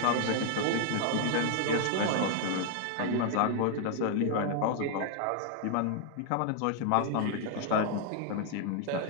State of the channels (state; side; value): different; both; correlation 0.00